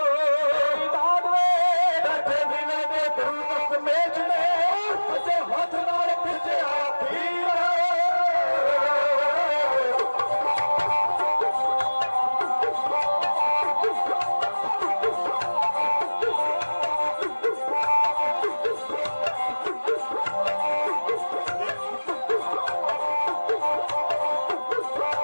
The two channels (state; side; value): inverted; both; correlation -1.00